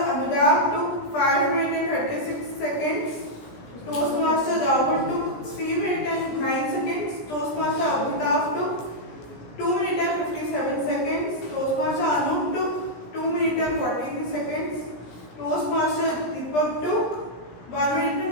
Anurag took 5 minutes and 36 seconds. Toastmaster Rahul took 3 minutes and 9 seconds. Toastmaster Abhitav took 2 minutes and 57 seconds. Toastmaster Anup took 2 minutes and 43 seconds. Toastmaster Deepak took 1 minute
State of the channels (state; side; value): late; right; 17 ms